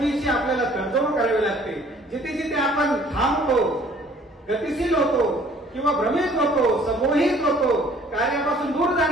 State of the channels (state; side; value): normal; both; correlation 0.56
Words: आपल्याला तडजोड करावी लागते, जिथे जिथे आपण थांबतो, गतिशील होतो किंवा भ्रमित होतो, समोहित होतो, कार्यापासून दूर